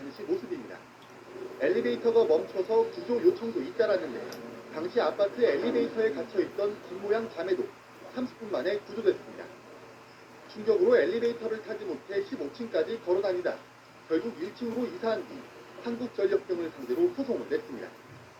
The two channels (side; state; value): both; identical; correlation 1.00